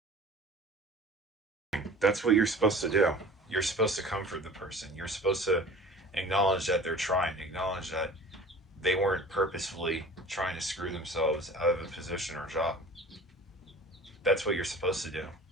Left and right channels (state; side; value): normal; both; correlation 0.42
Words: That's what you're supposed to do. You're supposed to comfort the person. You're supposed to acknowledge that they're trying, acknowledge that they weren't purposefully trying to screw themselves out of a position or job. That's what you're supposed to do.